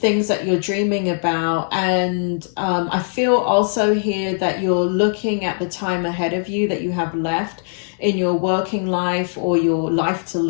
things that you're dreaming about. And I feel also here that you're looking at the time ahead of you that you have left in your working life, or your life to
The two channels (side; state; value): right; silent; digital silence